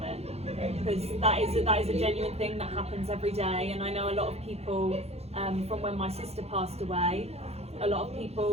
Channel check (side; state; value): left; late; 0.30 ms